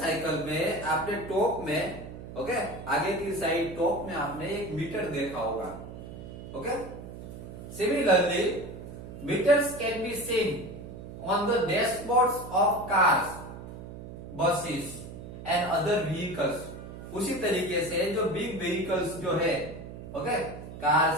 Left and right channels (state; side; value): noise; right; hum, 12 dB below the sound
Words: में आपने टॉप में, ओके, आगे की साइड टॉप में आपने एक मीटर देखा होगा। Okay, similarly meters can be seen on the dashboards of cars, buses and other vehicles. उसी तरीके से जो बिग व्हीकल्स जो है, ओके,